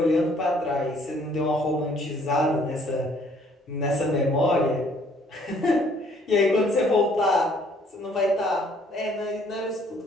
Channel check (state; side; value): normal; both; correlation 0.62